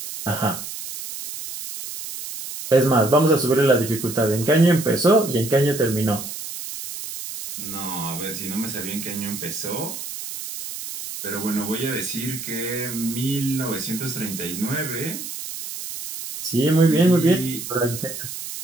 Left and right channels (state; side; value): noise; right; hiss, 9 dB below the sound